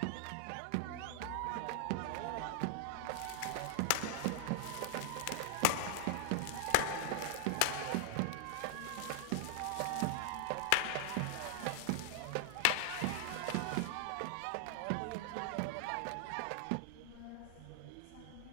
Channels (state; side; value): different; both; correlation 0.00